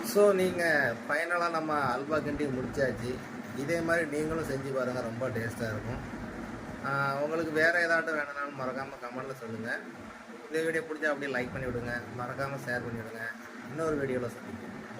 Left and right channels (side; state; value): both; identical; correlation 1.00